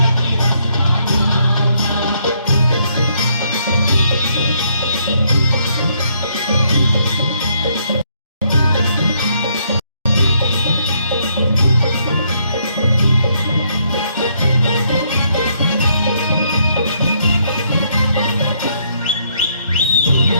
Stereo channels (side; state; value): both; inverted; correlation -0.71